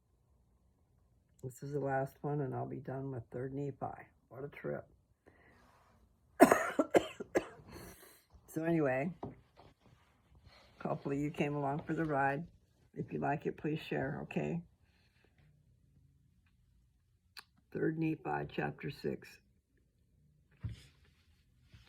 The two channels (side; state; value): both; identical; correlation 1.00